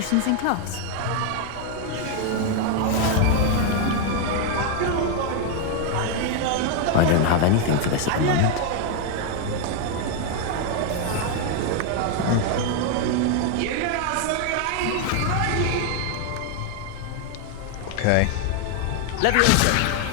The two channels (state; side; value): different; both; correlation 0.01